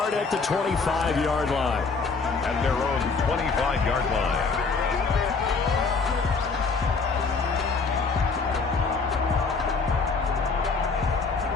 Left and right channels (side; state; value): right; quieter; 4.5 dB